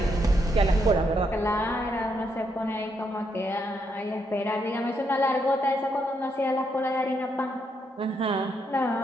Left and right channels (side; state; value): both; normal; correlation 0.78